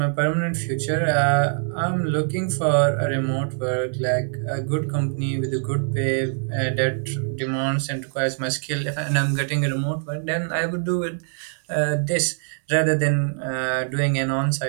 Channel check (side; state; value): left; silent; 63 dB below the other